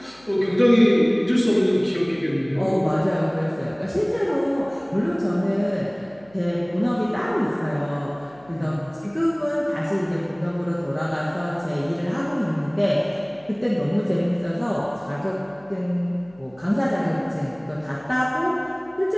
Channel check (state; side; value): noise; left; hum, 27 dB below the sound